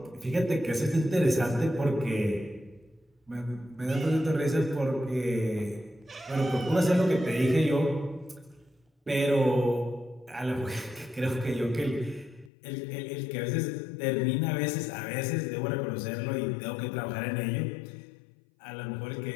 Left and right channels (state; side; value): drops out; right; at 12.5 s